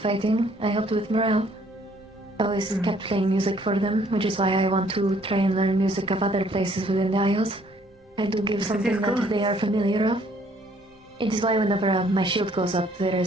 I helped with morale. I always kept playing music for them, which is why I want to try and learn music of other places within the Isles. I do give something that they are familiar of. It is why whenever my shield goes up, there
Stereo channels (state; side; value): normal; both; correlation 0.62